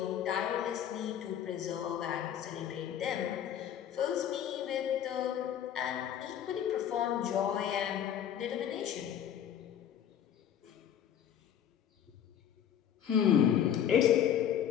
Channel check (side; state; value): right; quieter; 9.8 dB